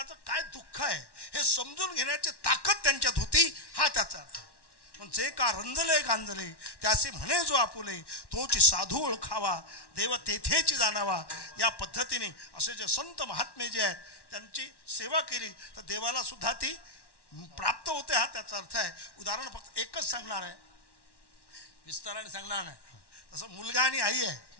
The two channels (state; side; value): late; right; 1.1 ms